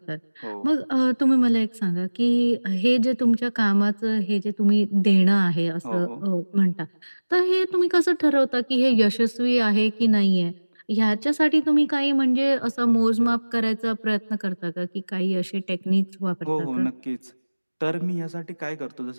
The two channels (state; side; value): inverted; both; correlation -1.00